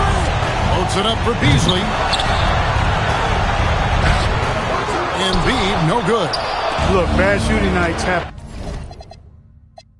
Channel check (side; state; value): both; identical; correlation 1.00